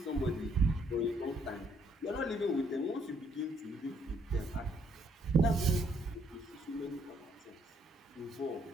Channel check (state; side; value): normal; both; correlation 0.69